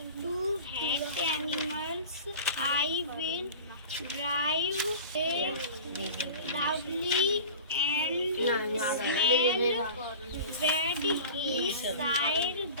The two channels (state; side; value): inverted; both; correlation -0.37